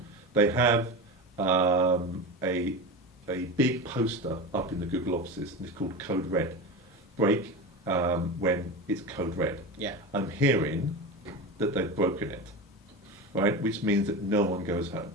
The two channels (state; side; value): normal; both; correlation 0.25